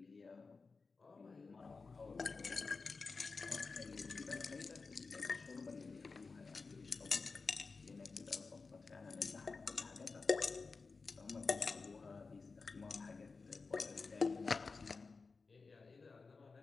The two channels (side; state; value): right; quieter; 4.3 dB